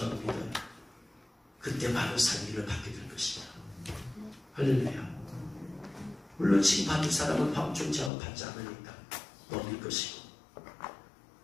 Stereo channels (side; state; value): right; drops out; at 8.1 s